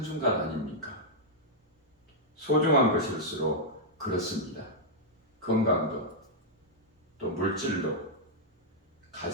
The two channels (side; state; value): both; normal; correlation -0.06